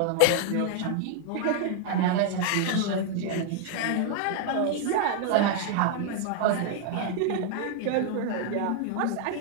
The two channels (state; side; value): different; both; correlation 0.00